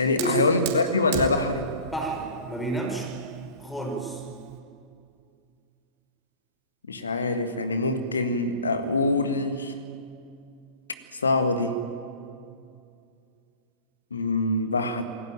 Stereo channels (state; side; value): inverted; both; correlation -0.44